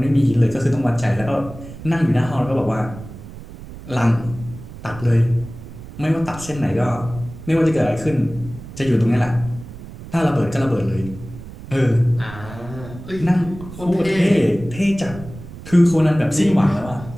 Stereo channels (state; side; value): noise; right; rumble, 14 dB below the sound